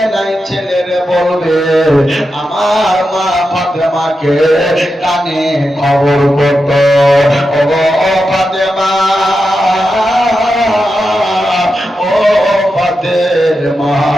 নাই, ছেলেরে বলবে আমার মা ফাতেমাকে কানে খবর করত, ও ফাতেমা, ও ফাতেমা,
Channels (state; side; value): normal; both; correlation 0.89